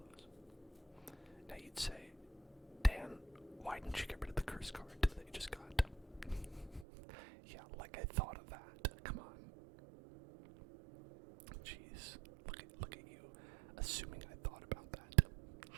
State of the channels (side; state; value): left; drops out; at 6.9 s